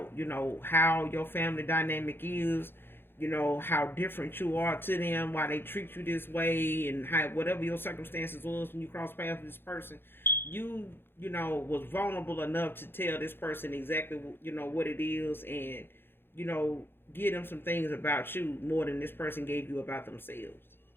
how your family dynamic is, how different you are to them, why they treat you this way, and how whatever your circumstances was when you cross paths with this person, was vulnerable enough to tell this person exactly, what it is, and, give them some things about you more than this person gave you about themselves.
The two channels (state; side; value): late; right; 0.10 ms